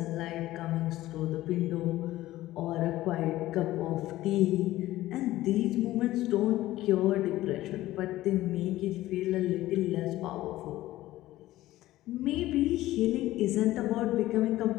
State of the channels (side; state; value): right; quieter; 15.9 dB